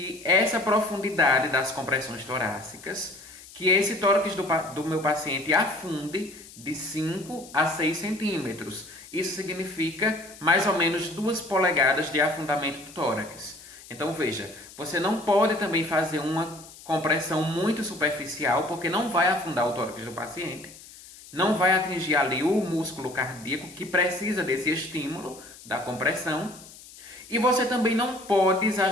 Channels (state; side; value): noise; left; hiss, 19 dB below the sound